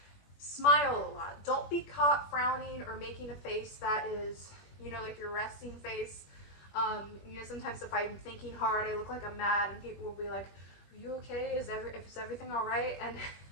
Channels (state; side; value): late; right; 21 ms